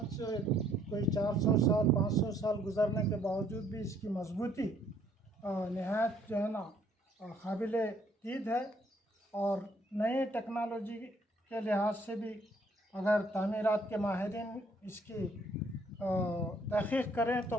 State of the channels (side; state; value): both; normal; correlation 0.65